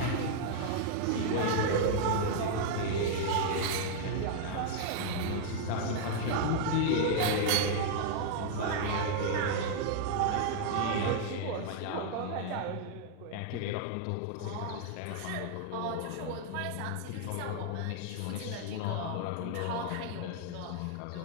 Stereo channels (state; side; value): different; both; correlation -0.01